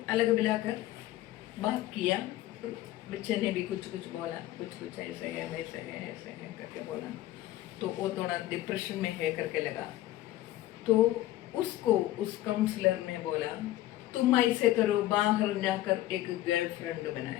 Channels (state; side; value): quieter; right; 15.0 dB